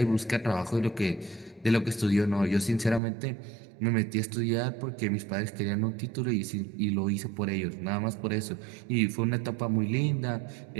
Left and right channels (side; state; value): left; drops out; at 3.0 s